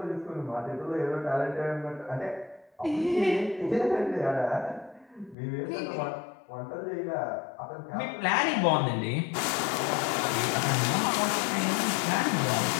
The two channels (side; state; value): right; drops out; at 5.4 s